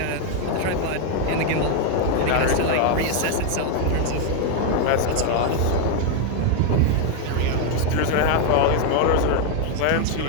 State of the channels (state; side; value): different; both; correlation 0.01